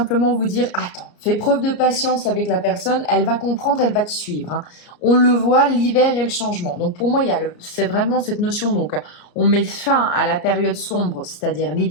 vous dire, attends, fais preuve de patience avec la personne, elle va comprendre, elle va te suivre. Hein. On le voit, l'hiver et le changement. Donc pour moi, c'est vraiment cette notion. Donc on met fin à la période sombre, c'est-à-dire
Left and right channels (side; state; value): right; late; 34 ms